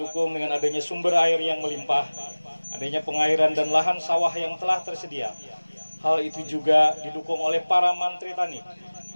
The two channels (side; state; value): both; inverted; correlation -1.00